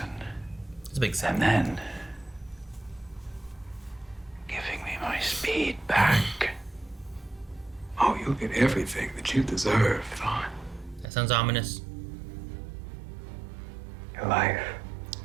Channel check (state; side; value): drops out; left; at 11.1 s